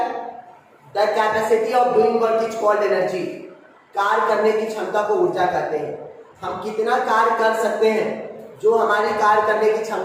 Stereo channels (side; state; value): both; identical; correlation 1.00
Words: the capacity of doing work is called energy. कार्य करने की क्षमता को ऊर्जा कहते हैं। हम कितना कार्य कर सकते हैं, जो हमारी कार्य करने की